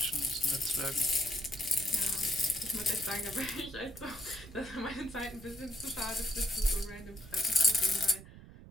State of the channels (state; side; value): noise; right; rumble, 17 dB below the sound